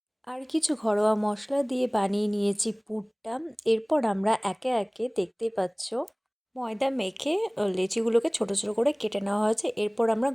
আর কিছু ঘরোয়া মশলা দিয়ে বানিয়ে নিয়েছি পুরটা। এরপর আমরা একে একে দেখতেই পাচ্ছ ময়দা মেখে লেচিগুলোকে ছোট ছোট করে কেটে নেওয়া হয়েছে। এরপর আমরা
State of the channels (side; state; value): both; identical; correlation 1.00